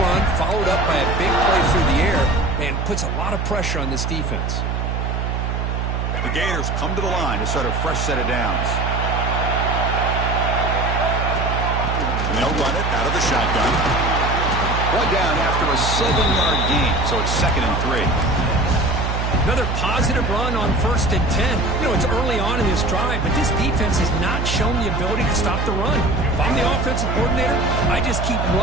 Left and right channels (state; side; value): noise; right; hum, 1 dB below the sound